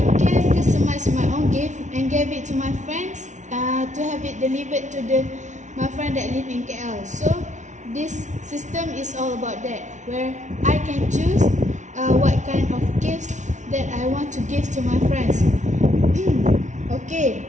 can customize my own gift and give it to my friends to have it delivered to my friend that live in KL. So this system is all about that, where I can choose what kind of gifts that I want to give to my friends. Okay,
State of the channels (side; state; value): left; late; 0.35 ms